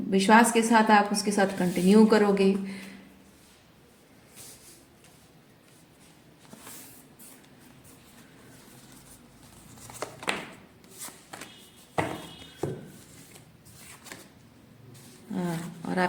विश्वास के साथ आप उसके साथ कंटिन्यू करोगे। हाँ, और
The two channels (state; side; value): identical; both; correlation 1.00